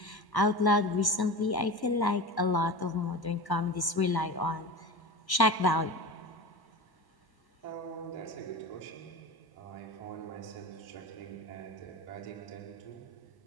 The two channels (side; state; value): right; late; 1.1 ms